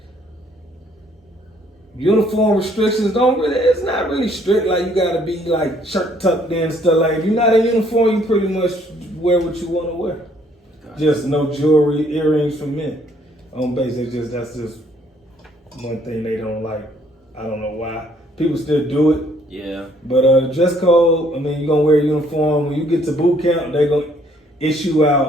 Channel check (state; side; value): normal; both; correlation 0.64